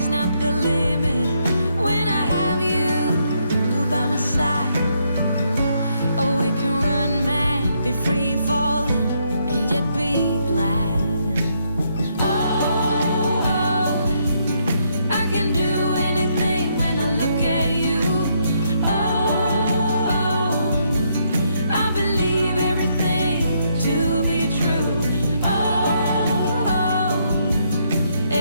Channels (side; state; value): both; inverted; correlation -0.74